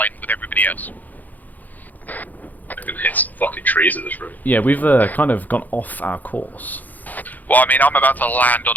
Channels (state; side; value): late; right; 0.082 ms